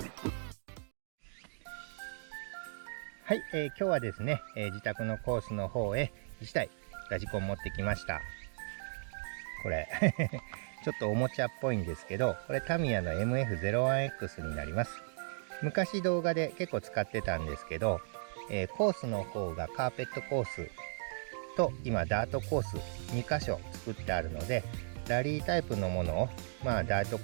はい、今日はですね、自宅のコースの方へ1台ラジコン持ってきました。これちょっとおもちゃっぽいんですけど、これタミヤの MF-01X になります。昔動画で結構使ってたんですけど、コースの方がカーペットコースと今ダートコース2箇所作ってあるので、ラリータイプのものをダート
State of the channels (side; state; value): left; silent; digital silence